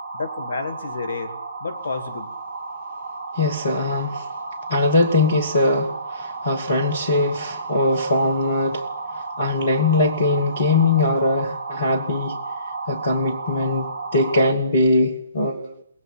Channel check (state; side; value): inverted; both; correlation -0.55